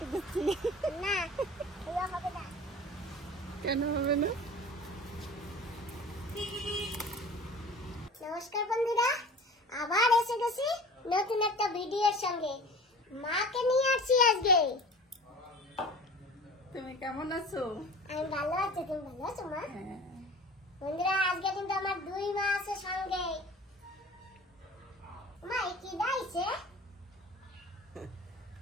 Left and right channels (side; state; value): both; normal; correlation 0.40